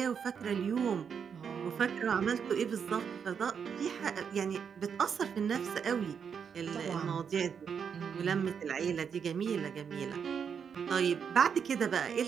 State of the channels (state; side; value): quieter; left; 7.0 dB